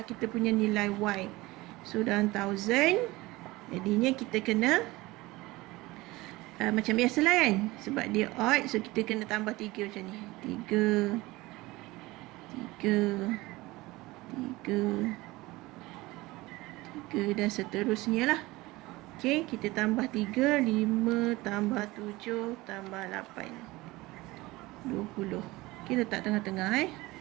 kita punya nilai Y. So dalam 1000, jadinya kita kena macam biasa lah kan, sebab dia odd, so kita kena tambah 3 macam ni. 3 dan seterusnya lah. Okay, kita tambah 3, 5 tambah 7 tambah 8, 20. Okay, letak tengah-tengah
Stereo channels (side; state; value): left; quieter; 20.4 dB